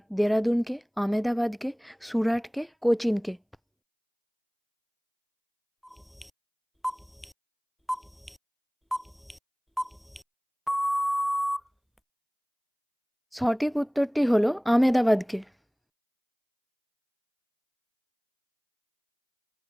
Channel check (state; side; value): identical; both; correlation 1.00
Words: দেরাদুনকে, আমেদাবাদকে, সুরাটকে, কোচিনকে? সঠিক উত্তরটি হলো আমেদাবাদকে।